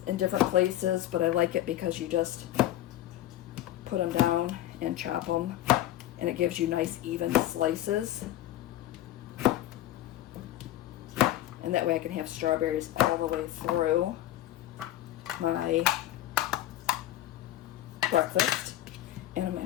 in different places, but I like it because you just put them down and chop them, and it gives you nice even slices. And that way I can have strawberries all the way through my breakfast. And I'm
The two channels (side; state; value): right; quieter; 13.9 dB